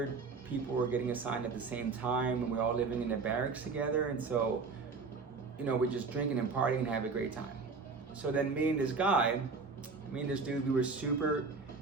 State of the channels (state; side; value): quieter; left; 4.5 dB